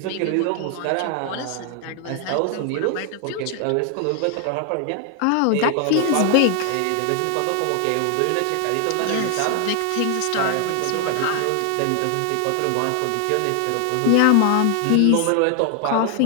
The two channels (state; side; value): different; both; correlation 0.00